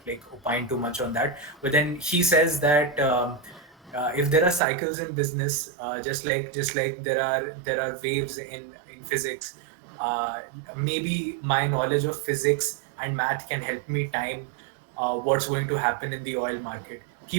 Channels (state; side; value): drops out; left; at 4.6 s